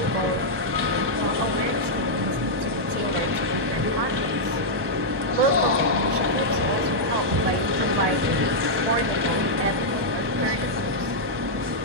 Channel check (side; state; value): left; late; 1.2 ms